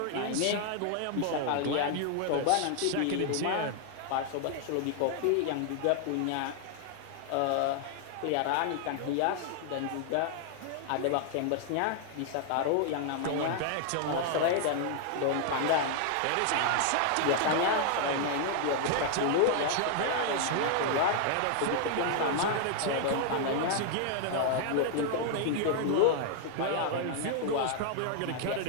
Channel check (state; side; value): different; both; correlation 0.00